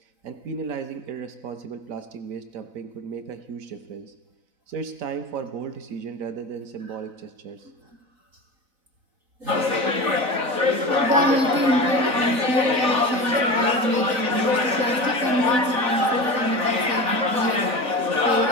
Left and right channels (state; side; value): late; left; 4.0 ms